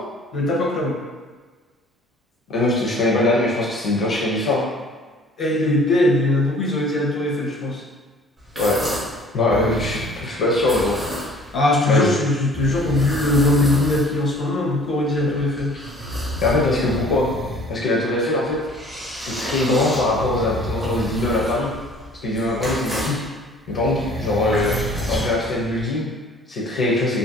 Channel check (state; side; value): normal; both; correlation 0.51